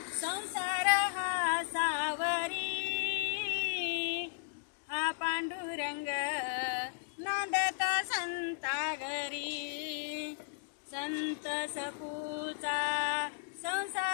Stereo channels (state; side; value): silent; right; digital silence